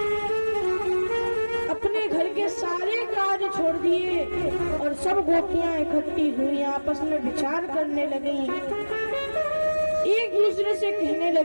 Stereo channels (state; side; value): inverted; both; correlation -1.00